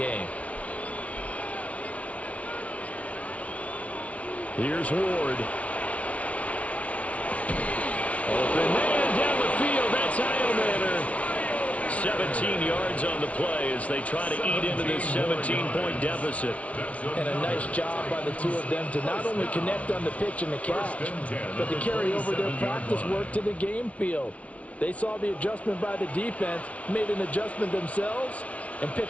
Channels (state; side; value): late; right; 0.065 ms